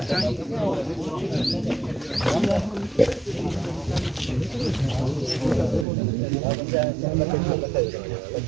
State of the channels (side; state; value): left; drops out; at 5.9 s